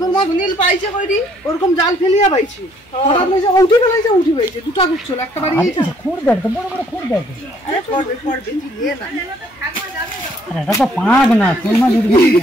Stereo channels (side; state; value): both; normal; correlation 0.64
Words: মাছ নীল পাইছে কইরি, ওরকম জাল ফেলিয়া পাইছে, হঠাৎ লইছে উঠি ফেলাইছে, উঠি পাইছে দুটা গুছল, একটা বাড়ি গিয়েছে, খুঁড় দেখ তো, বড় বড় খুঁড় দেখ, আরে পড়বে পড়বে, তুই নিয়ে না, আরে এটা তো পাগ না, শোল মাছ উঠবে,